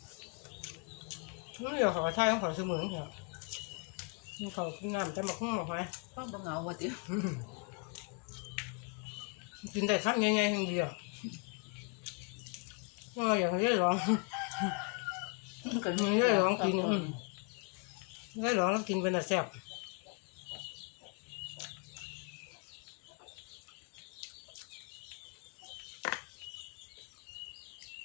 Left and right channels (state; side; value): quieter; right; 36.0 dB